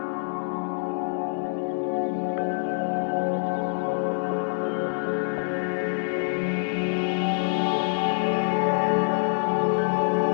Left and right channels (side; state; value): right; silent; 61 dB below the other